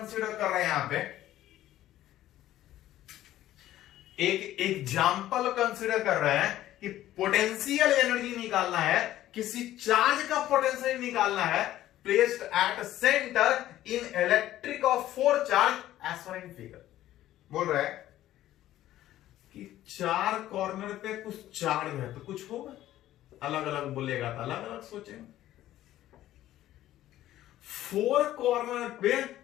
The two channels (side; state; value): right; quieter; 13.7 dB